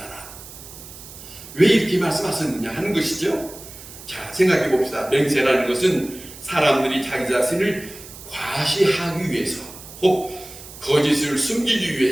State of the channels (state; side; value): noise; right; hiss, 16 dB below the sound